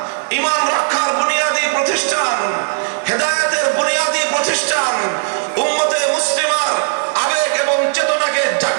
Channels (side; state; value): left; silent; digital silence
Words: ঈমান রক্ষার বুনিয়াদী প্রতিষ্ঠান, হেদায়েতের বুনিয়াদী প্রতিষ্ঠান, উম্মতে মুসলিমার আবেগ এবং চেতনাকে